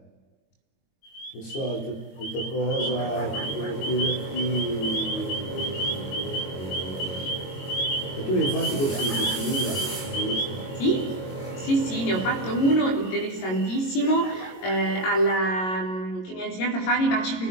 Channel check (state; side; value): late; right; 22 ms